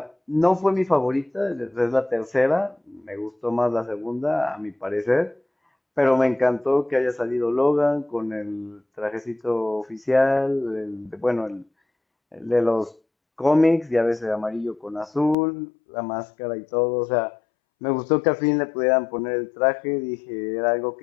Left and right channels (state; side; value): drops out; right; at 15.4 s